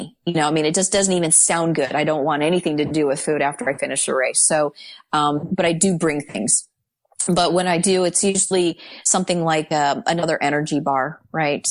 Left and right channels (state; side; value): identical; both; correlation 1.00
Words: It just doesn't even sound good. I don't want anything to do with food after I finish a race. So, but I do bring things. But when I do, it's usually something like another energy bar, right?